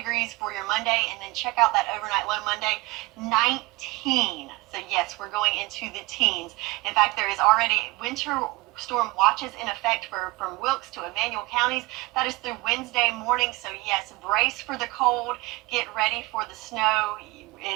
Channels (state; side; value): quieter; left; 22.7 dB